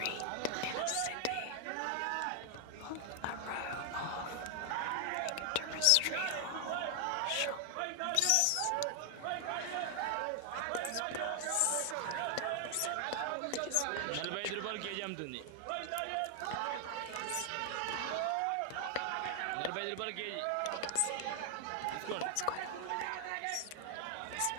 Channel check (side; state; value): both; different; correlation 0.00